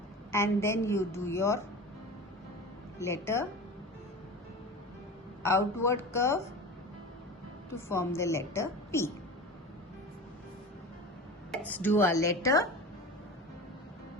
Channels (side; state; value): both; normal; correlation 0.32